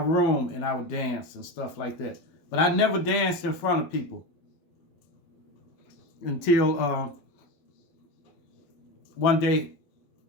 and I would dance and stuff like that. But I never danced in front of people until one day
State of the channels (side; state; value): right; late; 12 ms